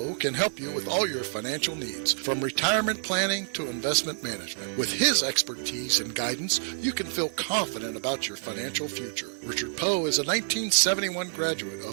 can help you with all your financial needs, from retirement planning to investment management. With his expertise and guidance, you can feel confident about your financial future. Richard Poe is a 1971 graduate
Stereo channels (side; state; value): left; silent; digital silence